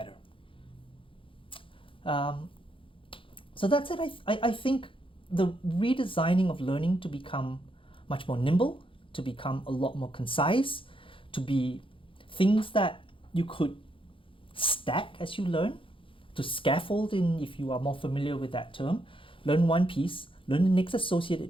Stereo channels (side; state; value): right; late; 0.25 ms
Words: So that's it. I think the redesigning of learning to become much more nimble, to become a lot more concise, to be things that you could stack as you learn, to scaffold in, if you are more familiar with that term. Learn one piece, learn the next